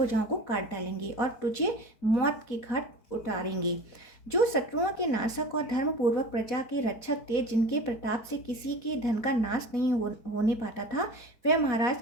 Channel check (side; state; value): right; late; 4.1 ms